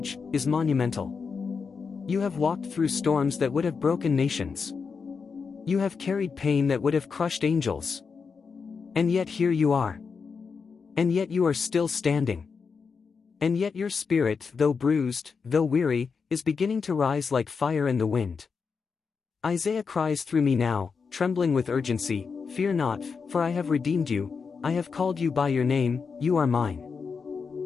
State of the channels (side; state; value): right; quieter; 5.4 dB